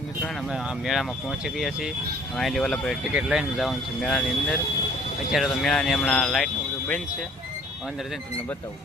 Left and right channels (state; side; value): normal; both; correlation 0.55